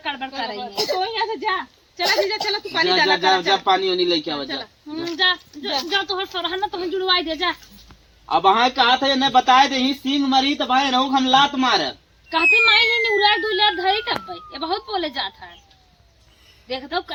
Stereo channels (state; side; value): identical; both; correlation 1.00